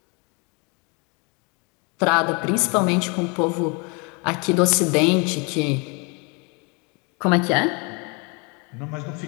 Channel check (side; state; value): right; quieter; 31.7 dB